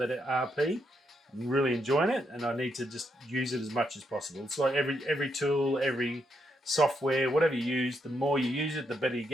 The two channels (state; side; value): normal; both; correlation 0.79